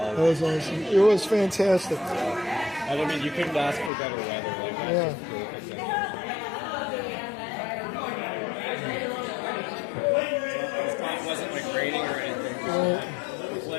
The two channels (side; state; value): right; drops out; at 3.9 s